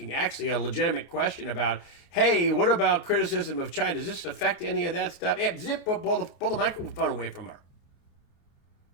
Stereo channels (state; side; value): late; right; 28 ms